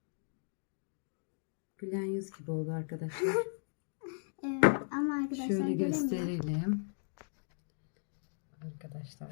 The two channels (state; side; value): silent; right; digital silence